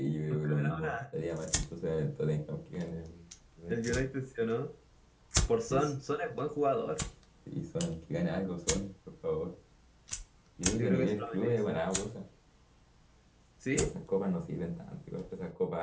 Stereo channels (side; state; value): both; identical; correlation 1.00